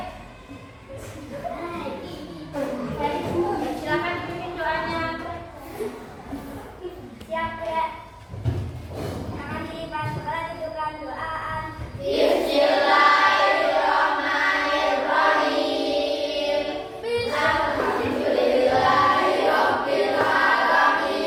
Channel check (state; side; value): identical; both; correlation 1.00